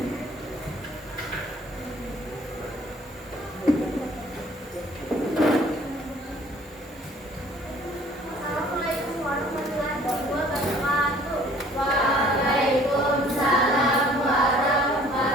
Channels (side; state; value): both; normal; correlation 0.55